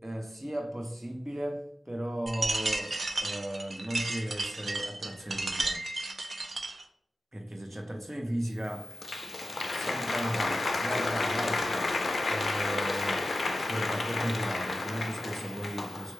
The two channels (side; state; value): both; normal; correlation 0.93